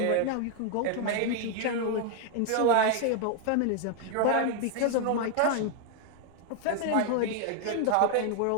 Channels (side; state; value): both; different; correlation 0.00